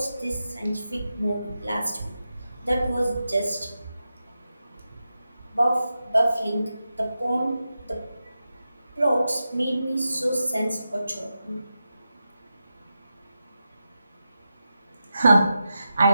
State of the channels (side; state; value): both; inverted; correlation -0.90